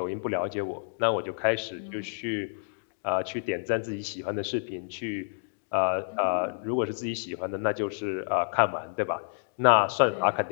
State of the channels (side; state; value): right; silent; digital silence